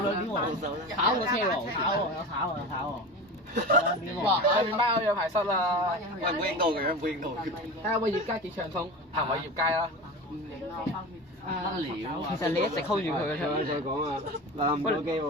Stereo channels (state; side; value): normal; both; correlation 0.29